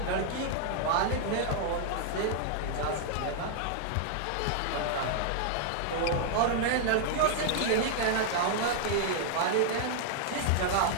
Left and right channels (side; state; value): both; different; correlation -0.01